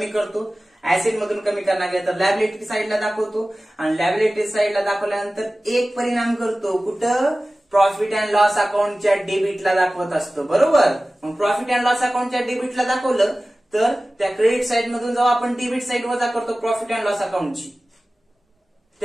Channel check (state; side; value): normal; both; correlation 0.97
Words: करतो. ऍसेट मधून कमी करणार गेलं तर लॅबिलिटी साईडला दाखवतो आणि लॅबिलिटी साईडला दाखवल्यानंतर एक परिणाम करतो कुठं? प्रॉफिट अँड लॉस अकाउंटच्या डेबिटला दाखवत असतो. बरोबर. मग प्रॉफिट अँड लॉस अकाउंटच्या डेबिटला दाखवलं तर त्या क्रेडिट साईड मधून जेव्हा आपण डेबिट साईड वजा करतो प्रॉफिट अँड लॉस अकाउंटची,